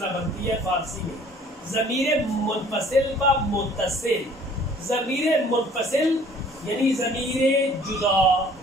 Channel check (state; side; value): normal; both; correlation 0.54